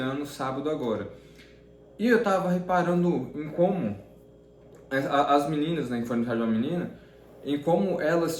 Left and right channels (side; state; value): both; identical; correlation 1.00